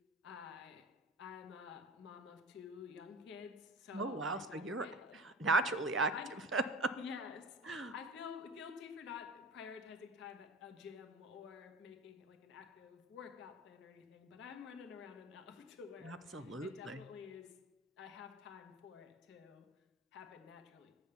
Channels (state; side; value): normal; both; correlation 0.35